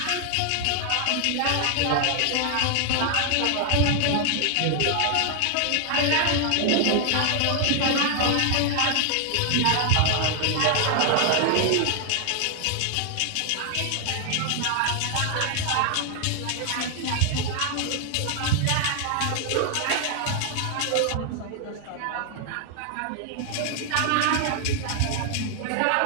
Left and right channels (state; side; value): different; both; correlation 0.00